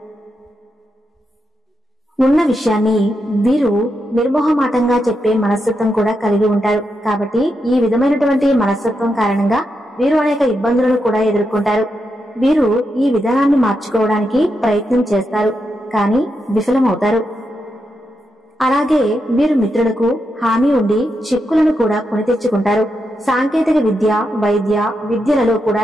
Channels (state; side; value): normal; both; correlation 0.85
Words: ఉన్న విషయాన్ని వీరు నిర్మోహమాటంగా చెప్పే మనస్తత్వం కూడా కలిగి ఉంటారు. కాబట్టి ఈ విధమైనటువంటి మనస్తత్వం కారణంగా వీరు అనేక ఇబ్బందులను కూడా ఎదుర్కొంటారు. వీరు ఈ విధానాన్ని మార్చుకోవడానికి ప్రయత్నం చేస్తారు, కానీ విఫలమవుతారు. అలాగే వీరు మిత్రులకు హామీ ఉండి చిక్కులను కూడా కొని తెచ్చుకుంటారు. సాంకేతిక విద్య, వైద్య విద్యలలో కూడా